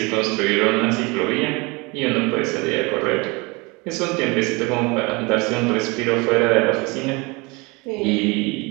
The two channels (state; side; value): quieter; left; 26.8 dB